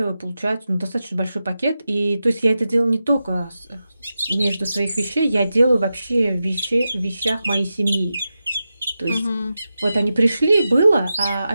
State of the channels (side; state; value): both; inverted; correlation -0.91